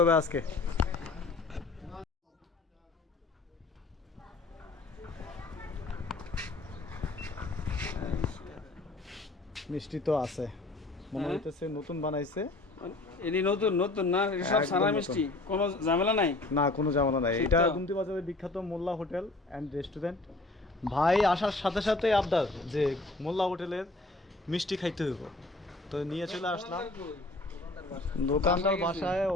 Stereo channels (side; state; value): right; quieter; 3.1 dB